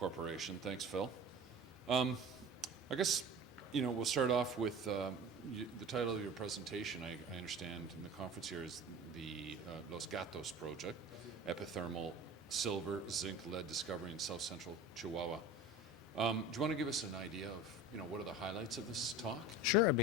Thanks, Phil. I guess, we'll start off with the title of your presentation. I understand in the conference here is the Los Gatos project, epithermal silver, zinc, lead discovery in south central Chihuahua. Do you want to give us an idea of, what are the highlights of this talk? Sure, I'd be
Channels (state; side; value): normal; both; correlation 0.37